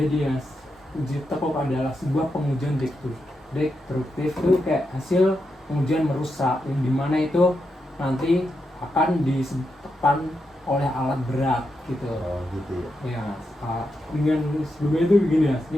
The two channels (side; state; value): both; normal; correlation 0.85